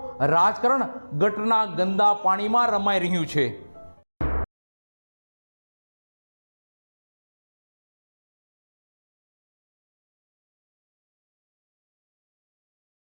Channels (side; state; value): both; inverted; correlation -1.00